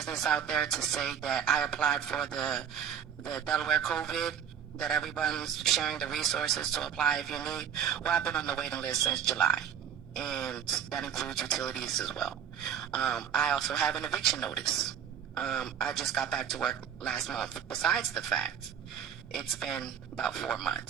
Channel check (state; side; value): quieter; left; 8.7 dB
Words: out there to say that I applied for the Delaware COVID, that everyone's sharing the resources to apply if you need. Well, I've been on the waiting list since July, and that includes utilities as well. I also have an eviction notice. I just got back to work last month. Besides the fact, it's been about 4